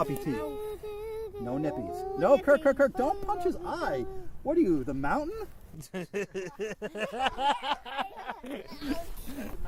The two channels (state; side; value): identical; both; correlation 1.00